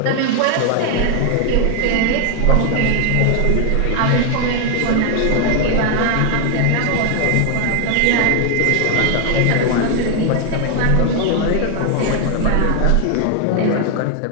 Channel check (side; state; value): both; different; correlation 0.00